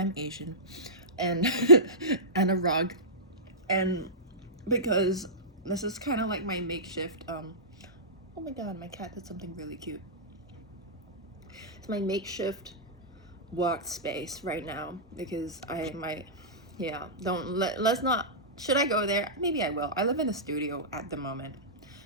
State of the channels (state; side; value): normal; both; correlation -0.17